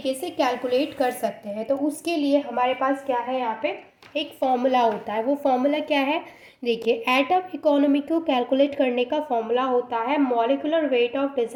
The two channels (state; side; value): identical; both; correlation 1.00